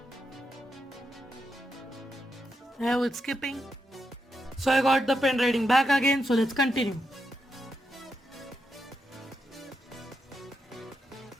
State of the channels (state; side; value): normal; both; correlation 0.84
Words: it's skipping. So I got the pen writing back again, so let's continue.